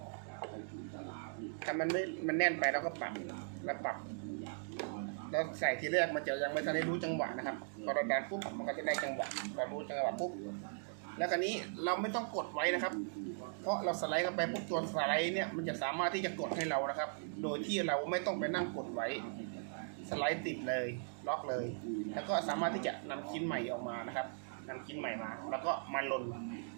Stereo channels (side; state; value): left; silent; digital silence